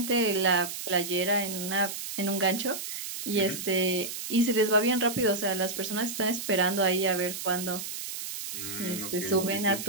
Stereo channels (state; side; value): noise; right; hiss, 7 dB below the sound